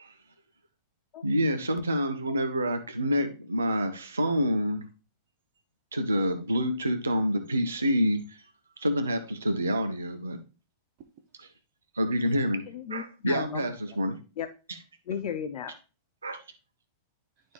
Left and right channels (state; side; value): inverted; both; correlation -0.80